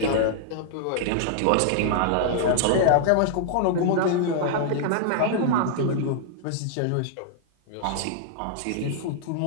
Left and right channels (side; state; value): both; different; correlation -0.01